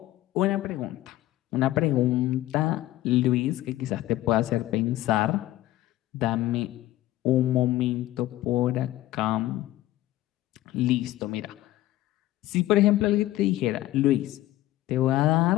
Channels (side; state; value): right; quieter; 15.5 dB